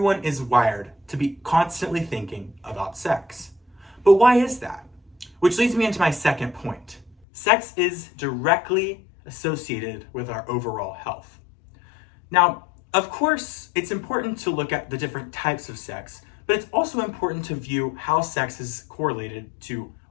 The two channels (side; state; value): right; drops out; at 7.2 s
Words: is wired to be constantly thinking about sex. But why is that? Which leads me into my second point. Sex is directly associated with our overall health. Now, of course, it's important to look at the different types of sex, but it's also important to view how sex is correlated to